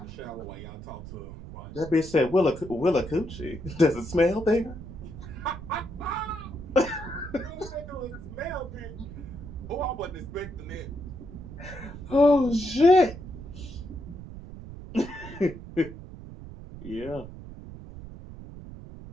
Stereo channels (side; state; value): right; noise; rumble, 12 dB below the sound